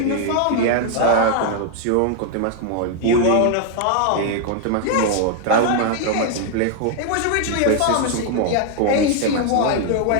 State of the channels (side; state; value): both; different; correlation 0.00